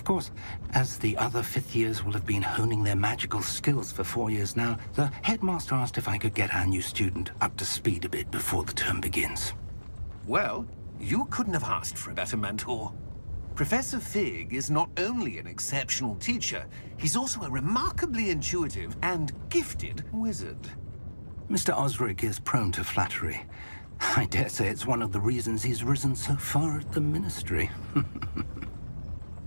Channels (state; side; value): inverted; both; correlation -1.00